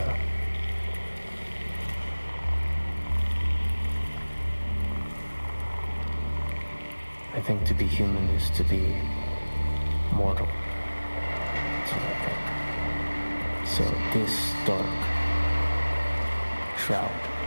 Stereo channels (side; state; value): both; inverted; correlation -1.00